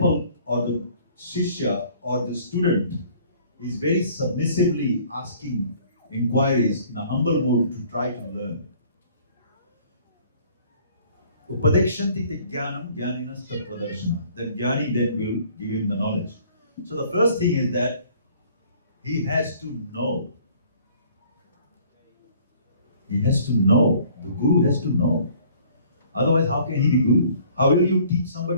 or the shishya or the student is very submissively asking inquiries in a humble mode to try to learn. Upadekshanti te jnanam jnaninas tattvadarshana. That jnani then will give him the knowledge. So the first thing is that he has to know. He has to know. The guru has to know. Otherwise, how can he be guru? How will you teach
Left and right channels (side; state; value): both; inverted; correlation -0.56